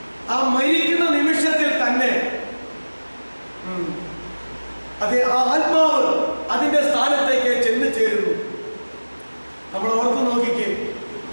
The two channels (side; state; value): both; inverted; correlation -1.00